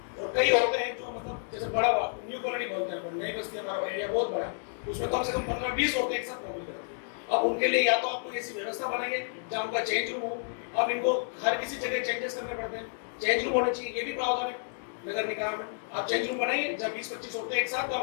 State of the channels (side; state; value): right; silent; digital silence